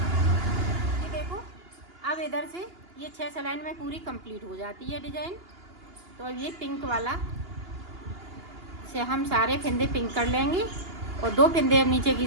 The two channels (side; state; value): left; late; 2.8 ms